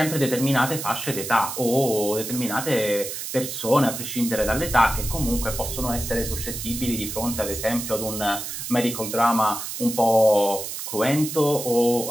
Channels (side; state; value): right; noise; hiss, 6 dB below the sound